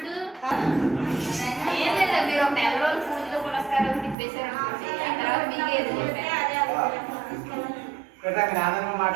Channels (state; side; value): drops out; left; at 4.2 s